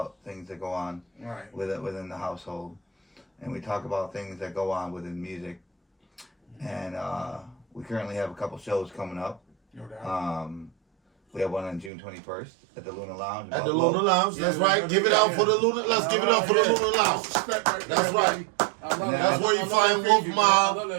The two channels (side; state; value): left; drops out; at 11.9 s